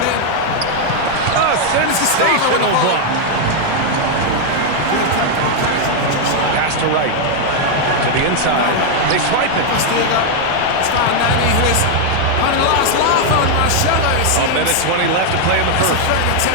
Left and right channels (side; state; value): both; different; correlation 0.00